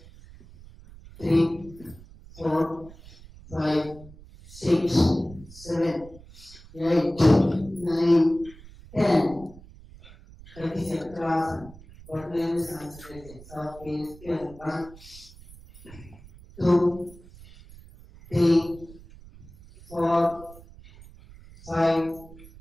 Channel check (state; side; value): noise; right; rumble, 20 dB below the sound